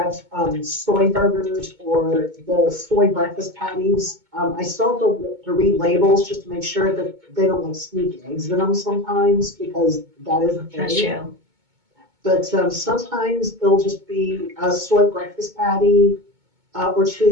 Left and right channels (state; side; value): late; left; 2.2 ms